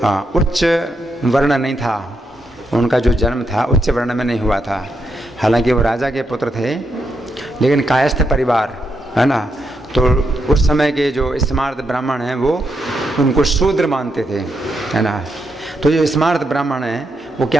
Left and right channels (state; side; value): normal; both; correlation 0.82